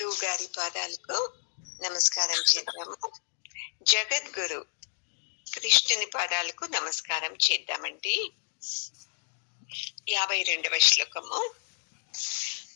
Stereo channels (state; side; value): silent; right; digital silence